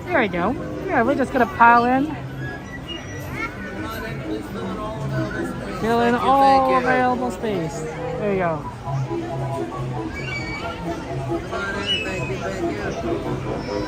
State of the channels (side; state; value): both; identical; correlation 1.00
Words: There we go. Yeah, we're just gonna pile in. Fill in all available space. There you go.